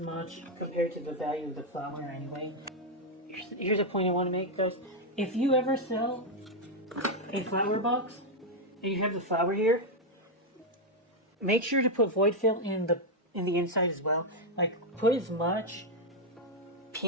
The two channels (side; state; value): both; normal; correlation 0.01